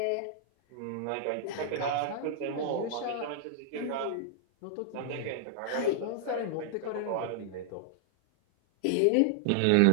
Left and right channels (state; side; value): different; both; correlation -0.01